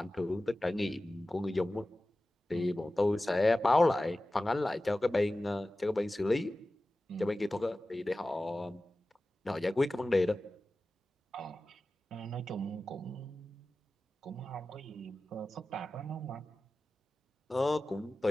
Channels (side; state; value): both; normal; correlation 0.96